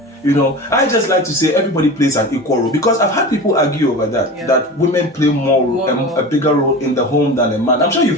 I just like to say everybody plays an equal role, because I've had people argue over that women play a bigger role in the home than a man. I'm sure you've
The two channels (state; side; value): normal; both; correlation 0.31